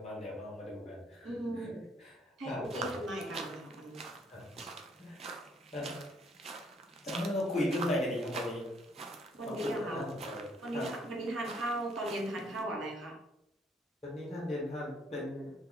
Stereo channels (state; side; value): normal; both; correlation 0.66